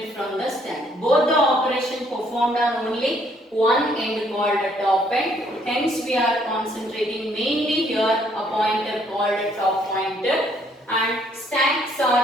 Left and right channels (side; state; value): both; normal; correlation 0.66